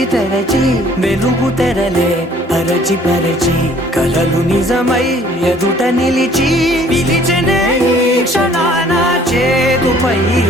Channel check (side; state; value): both; normal; correlation 0.57